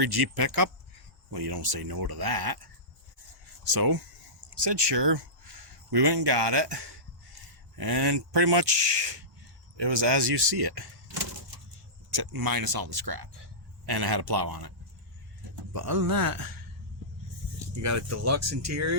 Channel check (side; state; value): both; normal; correlation -0.19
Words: Jeep pickup? Well, you don't say no to that. So, said sure. We went and got it, and pretty much it was as you see it, except minus all the scrap, and it had a plow on it. But other than that, you got a deluxe